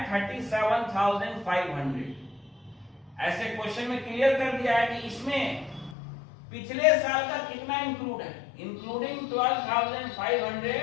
37,500। ऐसे क्वेश्चन में क्लियर कर दिया है कि इसमें पिछले साल का कितना इंक्लूड है, including 12,500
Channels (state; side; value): drops out; right; at 6.0 s